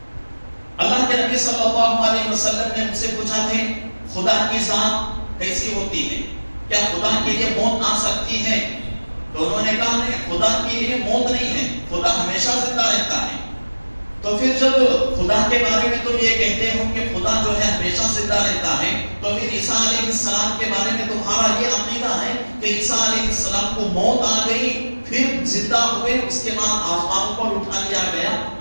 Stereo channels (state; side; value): inverted; both; correlation -1.00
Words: اللہ کے نبی صلی اللہ علیہ وسلم نے ان سے پوچھا تھے خدا کی ذات کیسی ہوتی ہے؟ کیا خدا کے لیے موت آ سکتی ہے؟ تو انہوں نے کہا نہیں، خدا کے لیے موت نہیں ہے، خدا ہمیشہ زندہ رہتا ہے. تو پھر جب خدا کے بارے میں تم یہ کہتے ہو کہ خدا جو ہے ہمیشہ زندہ رہتا ہے، تو پھر عیسیٰ علیہ السلام کے بارے میں تمہارا یہ عقیدہ ہے کہ عیسیٰ علیہ السلام کو موت آ گئی، پھر زندہ ہوئے، اس کے بعد آسمانوں پر اٹھا لیا گیا،